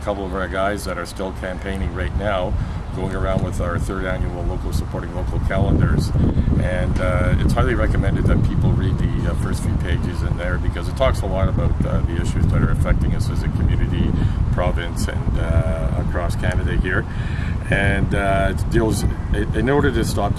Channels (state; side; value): identical; both; correlation 1.00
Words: couple of our guys that are still campaigning right now, going around with our third annual Local Supporting Local calendars, and it's highly recommended that people read the first few pages in there, because it talks a lot about the issues that are affecting us as a community, province, and across Canada here. And it deals, in order to stop